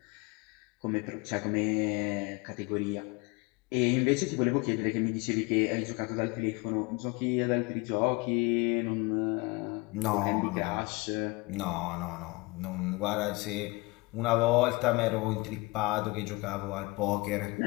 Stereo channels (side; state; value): right; quieter; 25.3 dB